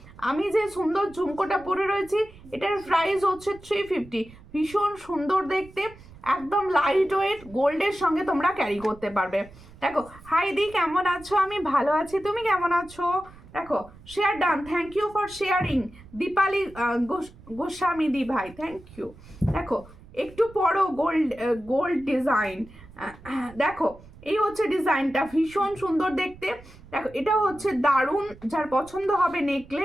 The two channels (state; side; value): noise; right; rumble, 21 dB below the sound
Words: আমি যে সুন্দর ঝুমকোটা পরে রয়েছি এটার প্রাইস হচ্ছে 350। ভীষণ সুন্দর দেখতে, একদম লাইট ওয়েট, গোল্ডের সঙ্গে তোমরা ক্যারি করতে পারবে। দেখো হাই দি, কেমন আছো? আমি ভালো আছি, তুমি কেমন আছো? দেখো share done, thank you for sharing. Dipali Goswami দি ভাই, থ্যাংক ইউ। দেখো একটু পরো গোল্ড ডিজাইন, দেখো এই হচ্ছে ডিজাইনটা, ভীষণ সুন্দর দেখতে। দেখো এটা হচ্ছে দারুণ, যার পছন্দ হবে